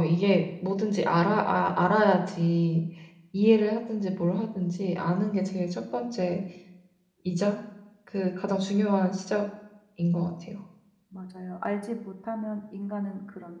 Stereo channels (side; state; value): both; identical; correlation 1.00